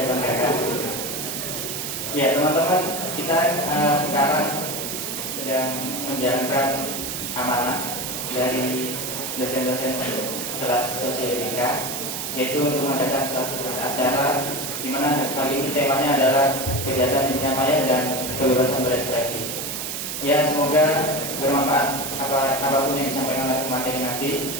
banggakan. Ya teman-teman, kita sekarang sedang menjalankan amanah dari dosen-dosen kelas sosioetika, yaitu untuk mengadakan suatu acara di mana kali ini temanya adalah kejahatan dunia maya dan kebebasan berekspresi. Ya, semoga bermanfaat apapun yang disampaikan oleh pemateri nanti.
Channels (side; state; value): right; noise; hiss, 4 dB below the sound